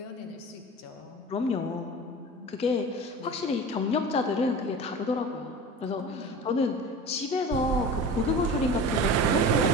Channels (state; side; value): normal; both; correlation 0.34